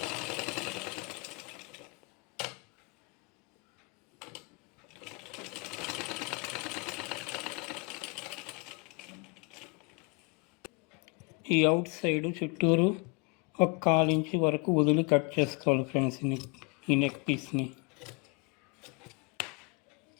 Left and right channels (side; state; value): right; quieter; 31.5 dB